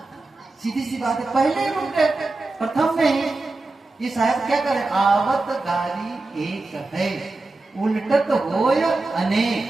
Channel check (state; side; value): quieter; left; 3.2 dB